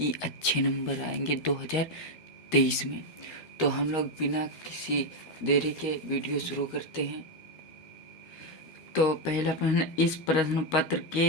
अच्छे नंबर आएंगे 2023 में। तो हम लोग बिना किसी देरी के वीडियो शुरू करते हैं। तो पहला प्रश्न, इस प्रश्न पत्र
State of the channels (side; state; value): right; late; 13 ms